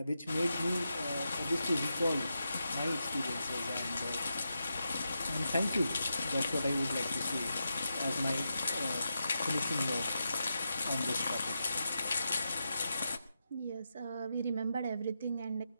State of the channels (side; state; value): both; inverted; correlation -0.87